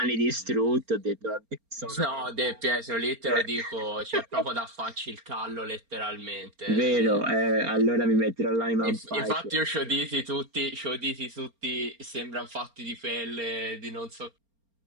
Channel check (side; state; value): left; late; 4.3 ms